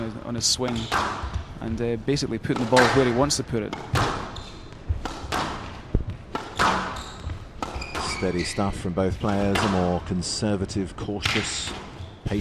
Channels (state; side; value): identical; both; correlation 1.00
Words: his swing, and basically putting the ball where he wants to put it. Steady stuff from both players. A more conservative, cautious,